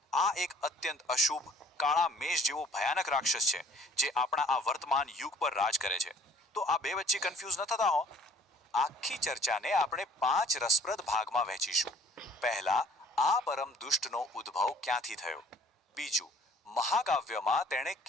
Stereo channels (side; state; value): both; normal; correlation 0.55